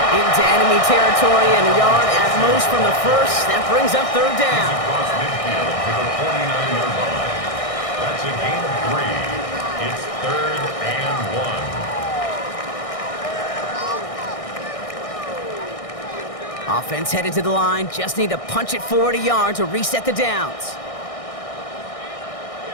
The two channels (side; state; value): right; late; 1.6 ms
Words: Into enemy territory and a yard at most from the first. That brings up third down. Across midfield to the 49-yard line. That's a gain of 3. It's 3rd and 1. Offense headed to the line. Just need to punch it forward a yard to reset the downs.